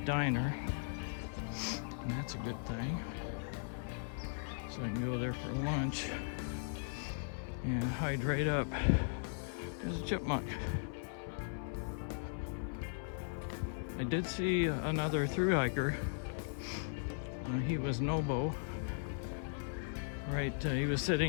and that's a good thing. So I can go there for lunch and hydrate up. There's a chipmunk. I did see another thru hiker. He was Nobo. Right, he was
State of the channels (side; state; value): right; silent; 52 dB below the other